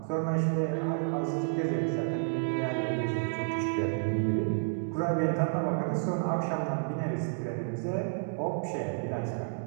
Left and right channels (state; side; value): silent; left; digital silence